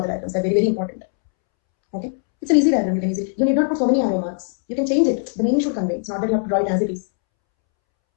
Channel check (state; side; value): silent; right; 65 dB below the other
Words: the diagrams. They're very, very important. Okay. It's an easy diagram. You can easily. You need not put so many arrow marks. You can change it. The meaning should convey. It's not that you have to draw it as it is.